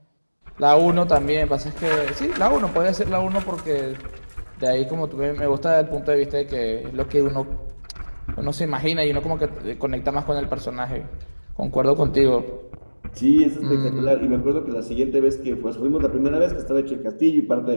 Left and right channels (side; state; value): both; inverted; correlation -1.00